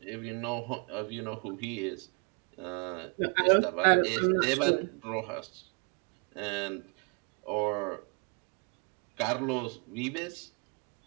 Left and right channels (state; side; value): quieter; left; 33.3 dB